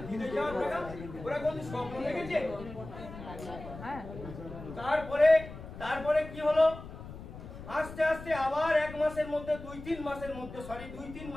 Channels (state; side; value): noise; left; rumble, 13 dB below the sound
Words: বিদেশে যাওয়ার টাকা, ওরা কোন স্বপ্ন দেখেছে? তারপরে কি হলো? আস্তে আস্তে আবার 1 মাসের মধ্যে 2-3